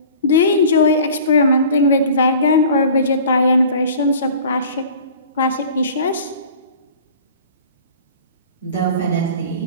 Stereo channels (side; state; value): both; inverted; correlation -0.44